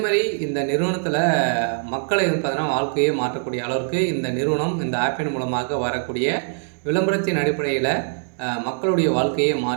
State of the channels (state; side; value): silent; left; 64 dB below the other